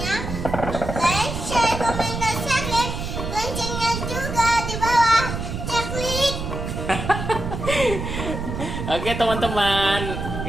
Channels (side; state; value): right; noise; rumble, 5 dB below the sound